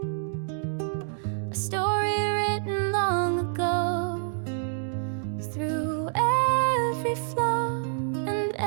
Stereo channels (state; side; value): silent; left; digital silence